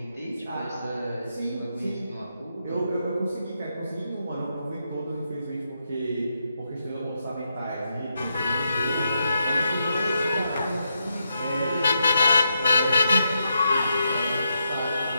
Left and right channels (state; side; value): inverted; both; correlation -0.82